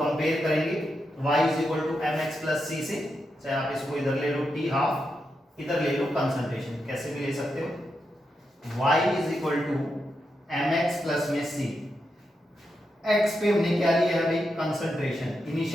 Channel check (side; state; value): both; normal; correlation 0.85